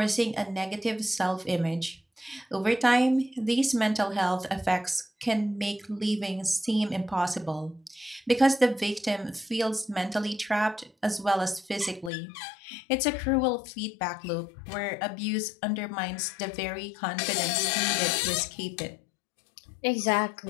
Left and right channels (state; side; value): drops out; right; at 12.1 s